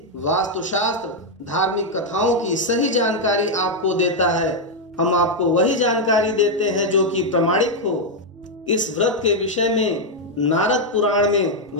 वास्तुशास्त्र, धार्मिक कथाओं की सही जानकारी आपको देता है। हम आपको वही जानकारी देते हैं जो कि प्रमाणिक हो। इस व्रत के विषय में नारद पुराण में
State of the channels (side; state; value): both; normal; correlation 0.00